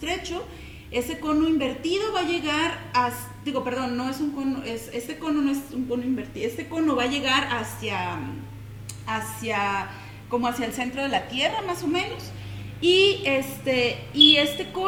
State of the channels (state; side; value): identical; both; correlation 1.00